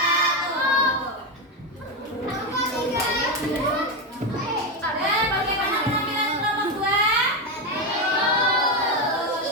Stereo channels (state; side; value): normal; both; correlation 0.10